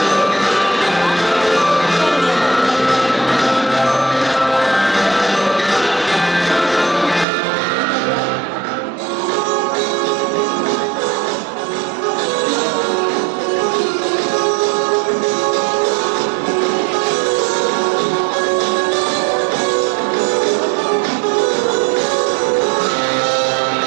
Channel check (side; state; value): left; drops out; at 7.2 s